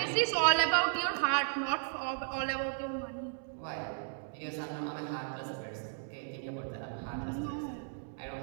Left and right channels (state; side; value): silent; left; digital silence